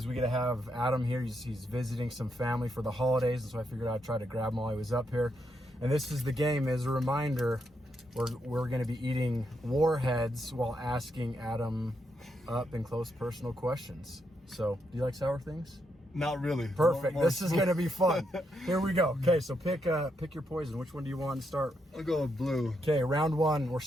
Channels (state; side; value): normal; both; correlation 0.80